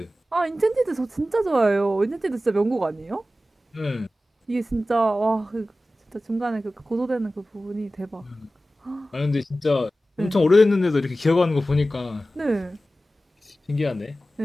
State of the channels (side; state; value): both; normal; correlation 0.95